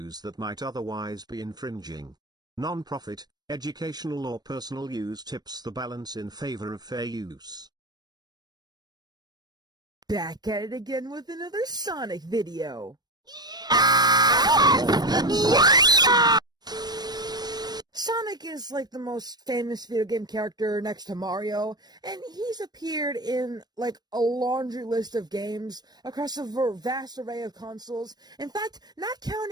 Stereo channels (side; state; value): left; late; 0.19 ms